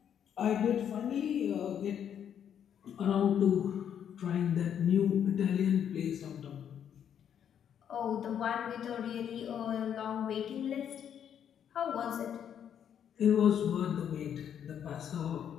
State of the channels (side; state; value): right; quieter; 8.9 dB